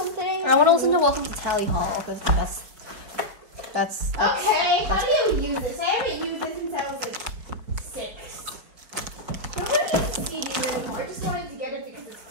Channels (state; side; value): late; left; 4.8 ms